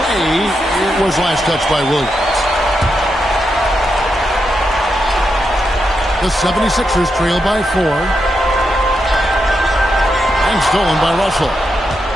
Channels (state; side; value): normal; both; correlation 0.84